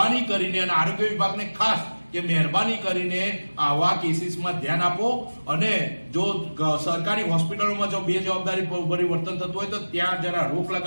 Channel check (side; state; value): both; inverted; correlation -1.00